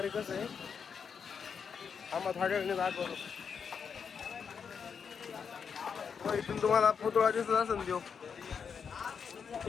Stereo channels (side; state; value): right; quieter; 6.5 dB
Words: कसं आहे. आम्हाला थोड्या वेळाने दाखवतो. इथून तुम्हाला पुतळा दिसत असेल देव.